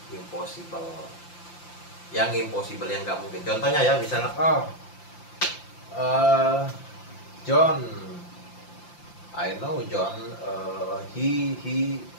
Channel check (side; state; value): right; late; 5.8 ms